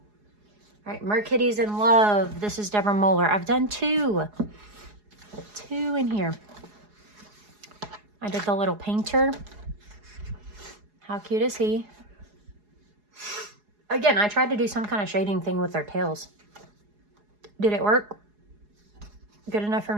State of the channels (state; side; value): late; left; 4.8 ms